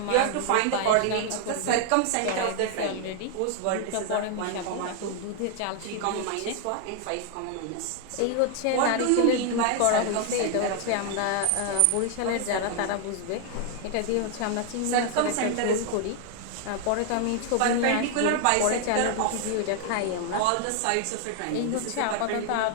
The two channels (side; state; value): both; different; correlation 0.00